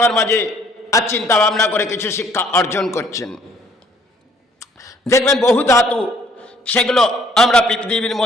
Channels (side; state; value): both; normal; correlation 0.61